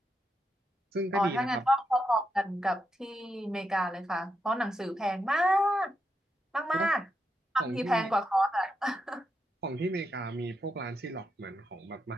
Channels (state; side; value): normal; both; correlation 0.84